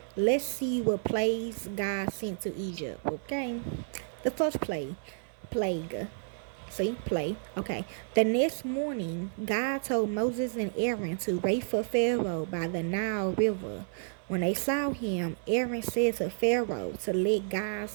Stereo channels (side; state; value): left; silent; 55 dB below the other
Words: Let's see what plagues God sent to Egypt, okay? The first plague. See, play. Okay. The next morning, God told Moses and Aaron to wait for Pharaoh by the Nile River. When they saw him, Aaron said to Pharaoh to let